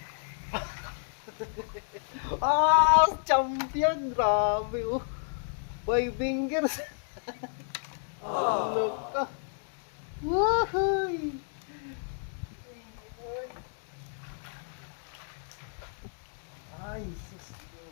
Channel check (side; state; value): right; silent; digital silence